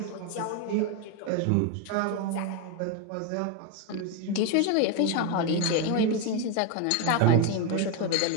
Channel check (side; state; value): both; different; correlation 0.02